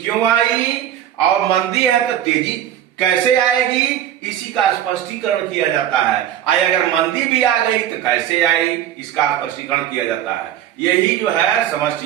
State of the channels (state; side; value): quieter; left; 11.2 dB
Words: आई, और मंदी है तो तेजी कैसे आएगी, इसी का स्पष्टीकरण किया जाता है। अगर मंदी भी आ गई तो कैसे आई, इसका स्पष्टीकरण किया जाता है। यही जो है